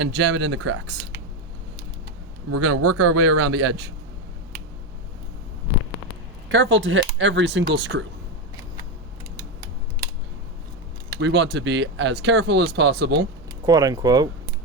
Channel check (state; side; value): normal; both; correlation 0.11